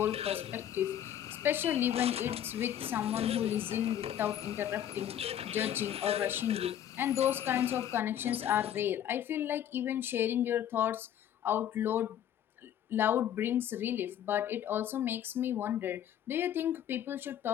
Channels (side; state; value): right; quieter; 10.5 dB